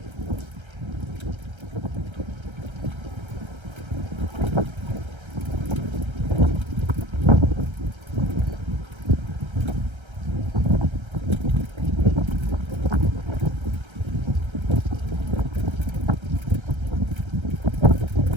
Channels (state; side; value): late; left; 1.3 ms